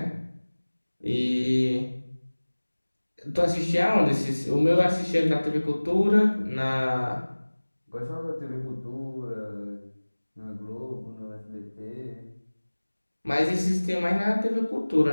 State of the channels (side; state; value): both; inverted; correlation -1.00